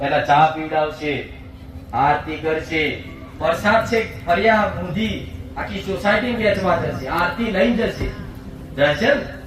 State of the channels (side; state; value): both; identical; correlation 1.00